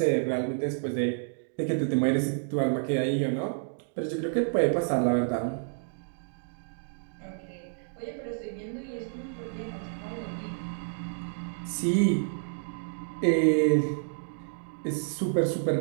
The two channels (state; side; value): silent; left; digital silence